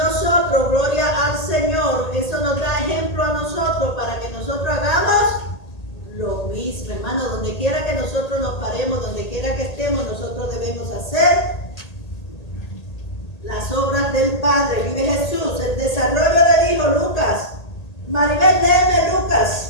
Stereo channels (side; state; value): right; late; 1.8 ms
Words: gloria al Señor, eso nos da ejemplo a nosotros para que nosotros hagamos lo mismo, hermano. Donde quiera que nosotros nos paremos, donde quiera que estemos, nosotros debemos hacer las obras del Padre. Vive Jesús. El desarrollo del Hijo, Lucas. Maribel, léeme